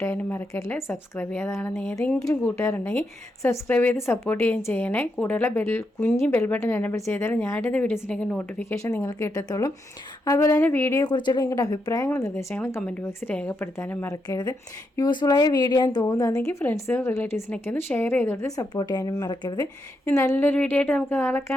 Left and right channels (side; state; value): both; normal; correlation 0.82